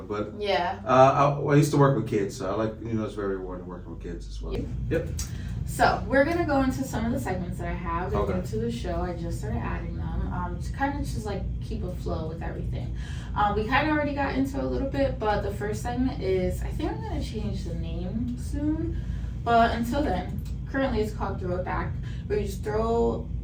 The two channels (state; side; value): identical; both; correlation 1.00